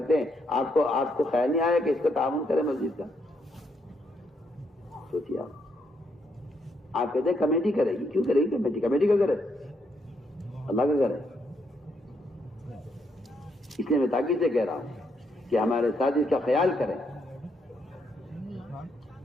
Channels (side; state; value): both; normal; correlation 0.76